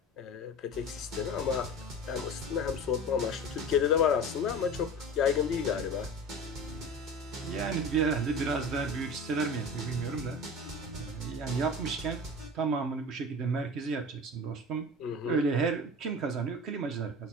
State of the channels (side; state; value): both; normal; correlation 0.34